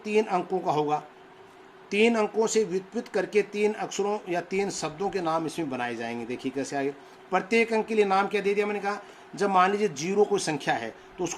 3 अंकों का होगा, 3 अंकों से व्युत्पन्न करके 3 अक्षरों या 3 शब्दों के नाम इसमें बनाए जाएंगे। देखिए कैसे आगे, प्रत्येक अंक के लिए नाम क्या दे दिया मैंने कहा, जब मान लीजिए 0 कोई संख्या है तो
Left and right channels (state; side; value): identical; both; correlation 1.00